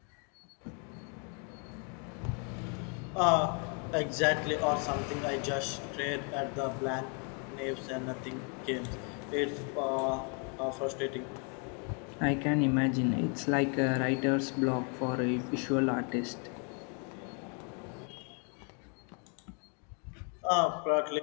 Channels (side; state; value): right; quieter; 38.1 dB